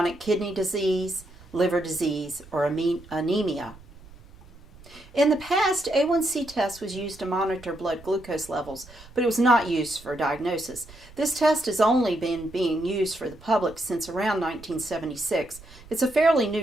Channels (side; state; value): right; noise; rumble, 21 dB below the sound